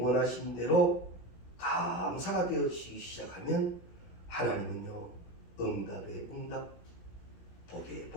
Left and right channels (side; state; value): right; late; 16 ms